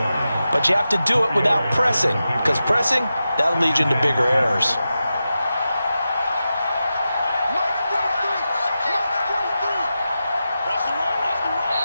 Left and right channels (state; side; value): inverted; both; correlation -0.91